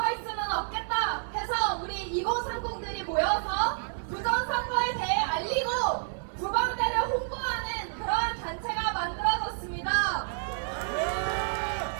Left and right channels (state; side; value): silent; left; digital silence